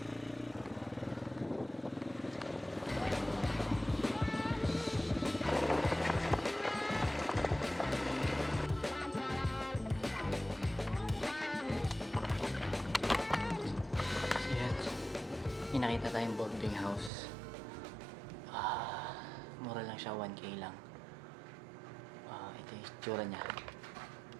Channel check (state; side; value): drops out; left; at 17.1 s